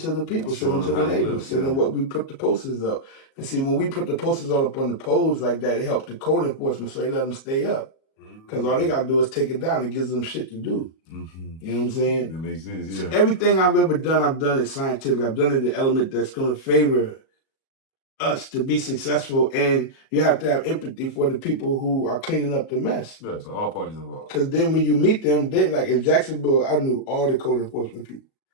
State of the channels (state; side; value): late; right; 37 ms